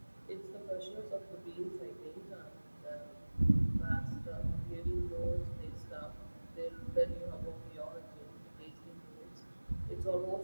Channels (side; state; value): both; inverted; correlation -1.00